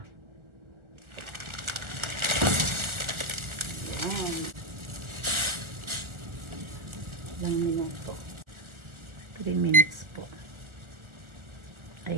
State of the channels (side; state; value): left; late; 1.4 ms